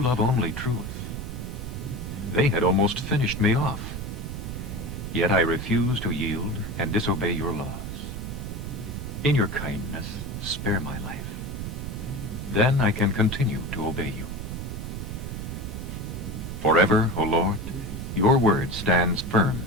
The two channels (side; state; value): right; noise; rumble, 6 dB below the sound